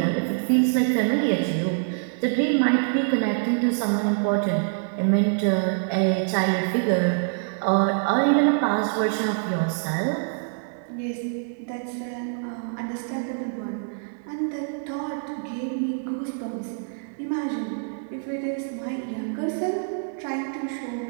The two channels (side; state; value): left; silent; 61 dB below the other